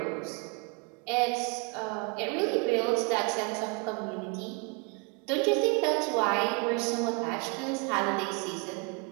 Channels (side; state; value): left; quieter; 32.4 dB